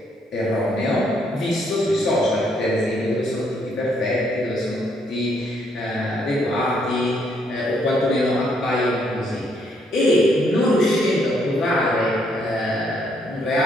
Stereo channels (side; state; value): both; normal; correlation 0.71